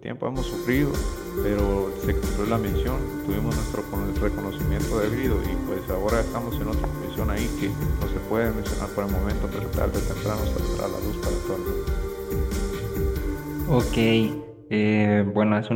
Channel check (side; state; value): both; identical; correlation 1.00